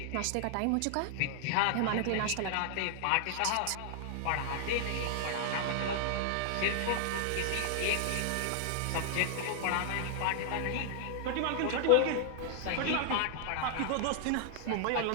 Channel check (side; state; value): both; different; correlation 0.00